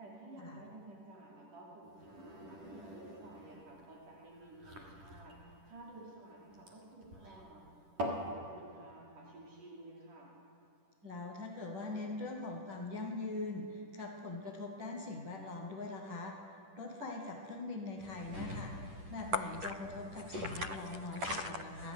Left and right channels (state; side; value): late; left; 10 ms